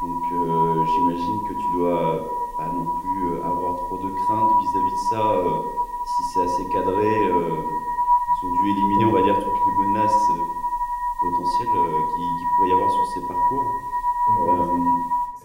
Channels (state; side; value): identical; both; correlation 1.00